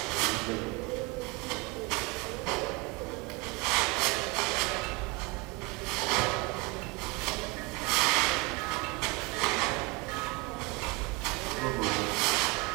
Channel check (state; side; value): quieter; left; 26.9 dB